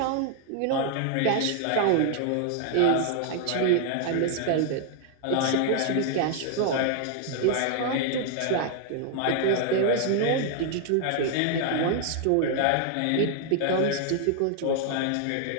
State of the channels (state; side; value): different; both; correlation 0.00